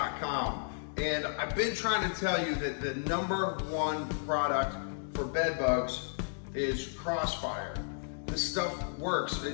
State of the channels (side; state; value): right; silent; digital silence